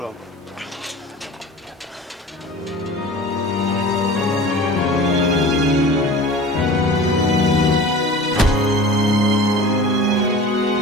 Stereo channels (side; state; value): both; normal; correlation 0.39